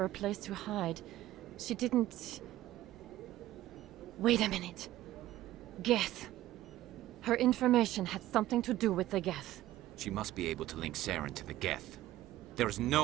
a place to hide. She didn't... Wait a minute. Geth. Her information had something to do with the Geth. She must be able to link Saren to the Geth. There is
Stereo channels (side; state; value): left; quieter; 15.0 dB